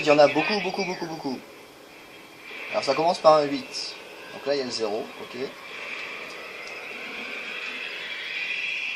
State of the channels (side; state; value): both; identical; correlation 1.00